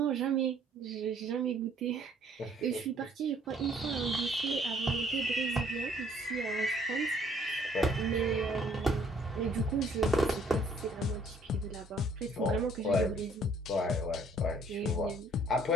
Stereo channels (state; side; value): normal; both; correlation 0.61